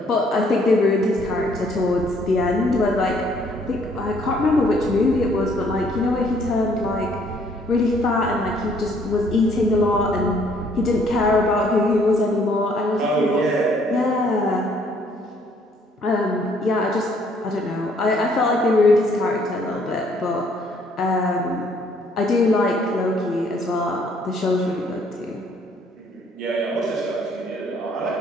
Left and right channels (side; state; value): both; normal; correlation 0.64